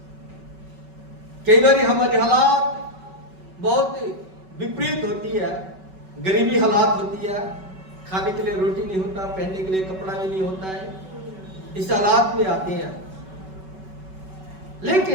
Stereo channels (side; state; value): left; late; 5.3 ms